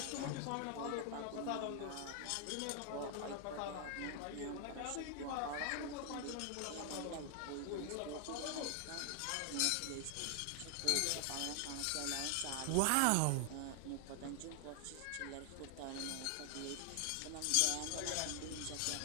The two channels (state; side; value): different; both; correlation 0.00